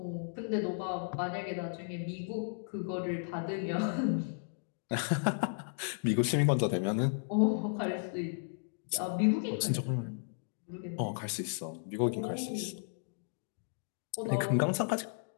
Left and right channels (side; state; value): right; silent; digital silence